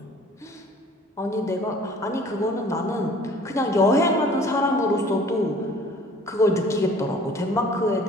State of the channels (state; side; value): normal; both; correlation 0.51